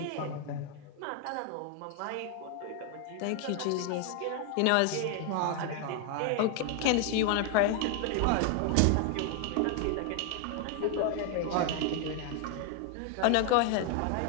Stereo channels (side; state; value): both; different; correlation 0.00